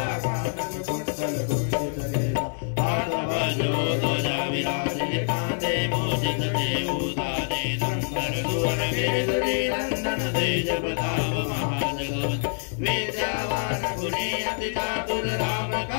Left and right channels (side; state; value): right; silent; digital silence